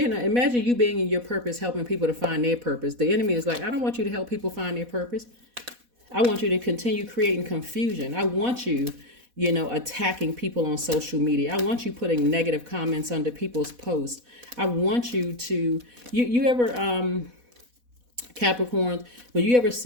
you being in your purpose, helping people to find their purpose. The enemy is like, I don't want you to help people find their purpose. I want you to continue creating confusion. I want you, attacking people on social media. I want you putting negative comments under people's posts. I want you to, you ever, Capricorns, when you ever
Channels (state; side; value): late; left; 4.1 ms